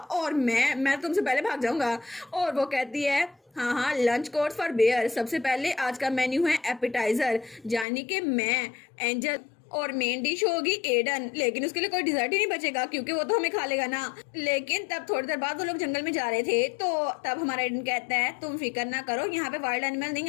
मैं तुमसे पहले भाग जाऊंगा। और वो कहती है हाँ लंच कोर्स फॉर बेयर, सबसे पहले आज का मेन्यू है एपिटाइजर, यानी कि मैं एंजल, और मेन डिश होगी एडन, लेकिन उसके लिए कोई डिजर्ट ही नहीं बचेगा क्योंकि वो तो हमें खा लेगा ना। लेकिन तब थोड़ी देर बाद वो लोग जंगल में जा रहे थे, तो तब हमारा एडन कहता है तुम फिक्र ना करो, यहाँ पे वाइल्ड एनिमल नहीं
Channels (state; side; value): drops out; right; at 7.9 s